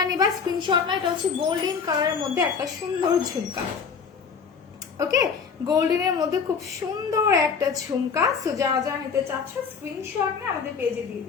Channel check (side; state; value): right; quieter; 6.0 dB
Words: নিবা স্ক্রিনশট না, এটা হচ্ছে গোল্ডেন কালারের মধ্যে একটা সুন্দর ঝুমকা, ওকে, গোল্ডেনের মধ্যে খুব সুন্দর একটা ঝুমকা। সো যারা যারা নিতে চাচ্ছ স্ক্রিনশট নিয়ে আমাদের পেজে দিয়ে